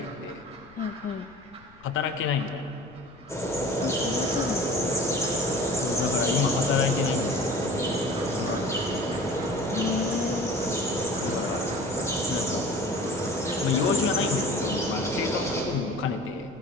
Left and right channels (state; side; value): noise; left; rumble, 26 dB below the sound